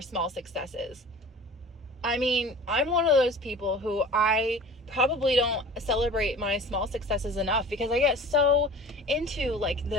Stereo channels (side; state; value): both; normal; correlation 0.42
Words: small successes? I mean, I'm one of those people who I probably don't celebrate my small successes enough because I get so into like